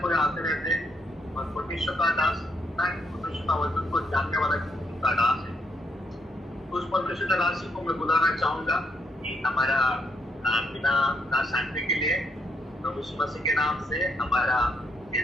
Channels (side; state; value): both; normal; correlation 0.76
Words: कोई आते रहते हैं। और परमेश्वर का दास परमेश्वर का वचन को जानने वाला का दास है। उस परमेश्वर का दास को मैं बुलाना चाहूंगा कि हमारा बिना ना शांति के लिए प्रभु यीशु मसीह के नाम से हमारा